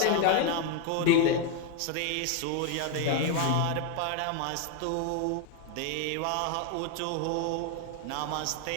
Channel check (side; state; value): both; different; correlation 0.01